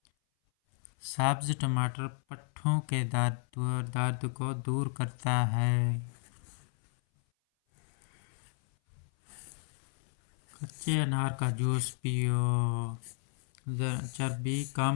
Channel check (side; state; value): right; silent; 56 dB below the other